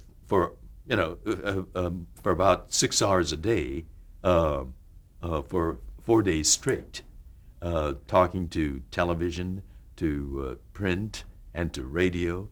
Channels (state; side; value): identical; both; correlation 1.00